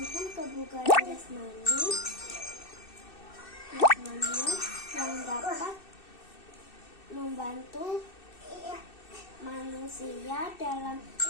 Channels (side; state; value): right; late; 2.6 ms